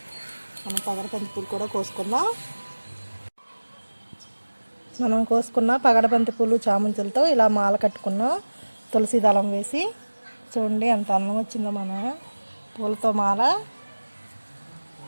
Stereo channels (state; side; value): inverted; both; correlation -1.00